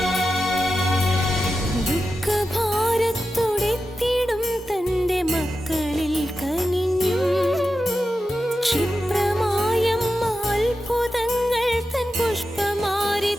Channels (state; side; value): normal; both; correlation 0.91